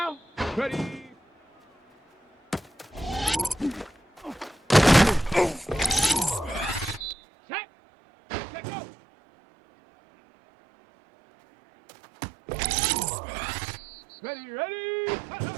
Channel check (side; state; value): left; drops out; at 7.2 s